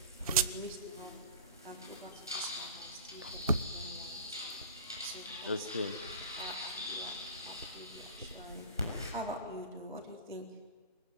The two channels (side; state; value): both; inverted; correlation -0.35